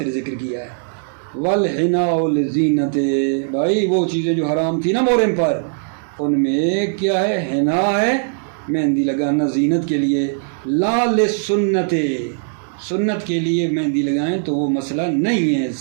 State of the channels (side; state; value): left; silent; digital silence